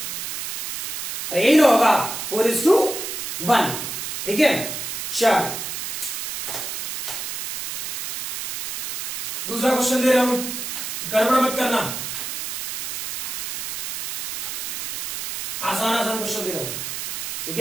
अरे यही ना होगा, 4:1। ठीक है, चल दूसरा क्वेश्चन दे रहा हूं, गड़बड़ मत करना, आसान क्वेश्चन दे रहा हूं। ठीक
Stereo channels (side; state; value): right; noise; hiss, 5 dB below the sound